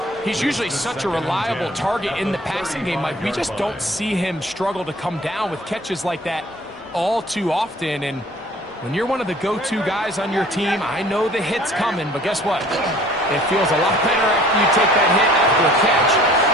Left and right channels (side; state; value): both; normal; correlation 0.52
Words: He's usually such a reliable target in the passing game, Mike. We just don't see him struggle to come down with catches like that all too often. And when you're one of the go-to guys on your team, I know the hit's coming, but guess what? It feels a lot better after you take that hit after a catch